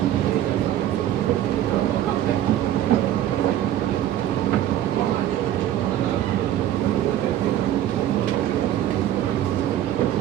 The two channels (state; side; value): quieter; left; 12.1 dB